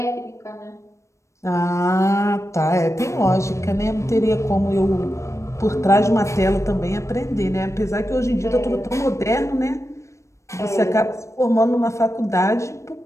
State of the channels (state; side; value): late; right; 0.14 ms